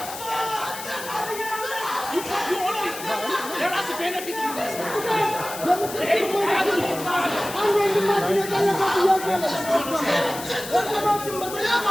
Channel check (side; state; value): left; noise; hiss, 11 dB below the sound